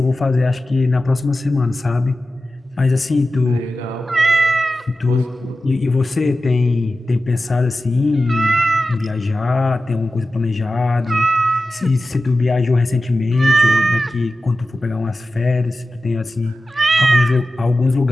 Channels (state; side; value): normal; both; correlation 0.94